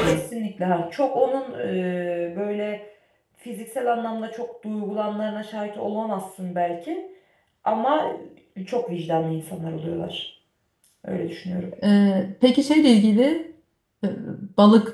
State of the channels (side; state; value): both; identical; correlation 1.00